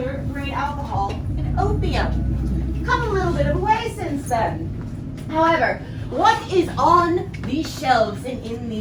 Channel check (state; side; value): identical; both; correlation 1.00